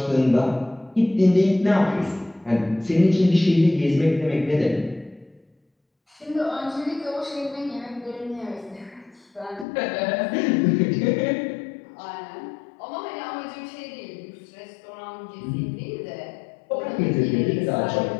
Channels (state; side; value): drops out; right; at 9.7 s